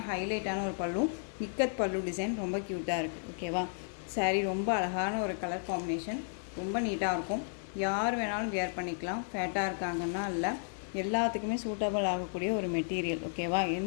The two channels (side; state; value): right; silent; digital silence